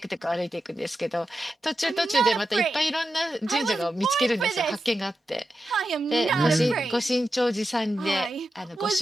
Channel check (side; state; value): both; normal; correlation 0.89